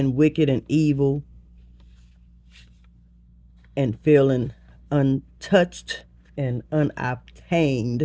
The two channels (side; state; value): both; identical; correlation 1.00